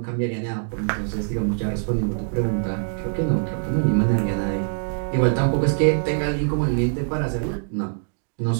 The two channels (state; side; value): silent; left; digital silence